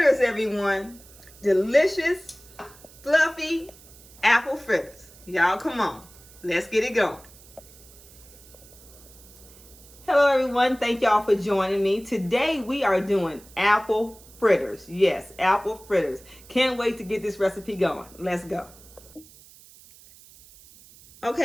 everyone. Delicious, fluffy apple fritters. Y'all, come on. Let's get it going. Hello, everyone. Thank y'all for joining me. Today, we are doing apple fritters. Yes, apple fritters. Can't wait to get this recipe going. Let's go.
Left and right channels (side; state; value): right; noise; hiss, 23 dB below the sound